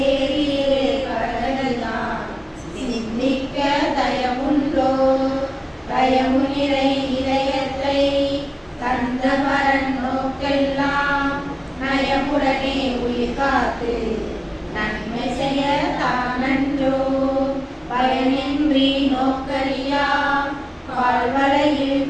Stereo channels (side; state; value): both; identical; correlation 1.00